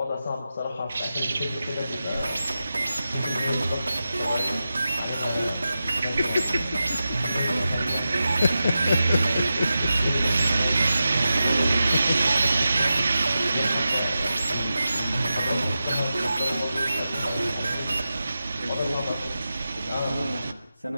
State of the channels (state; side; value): inverted; both; correlation -0.92